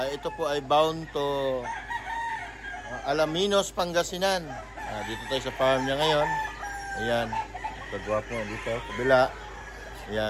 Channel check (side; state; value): both; identical; correlation 1.00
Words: Ito po ay bound to Alaminos, Pangasinan. Dito tayo sa farm niya ngayon. Ayan. Pagwapo dito. Kabila.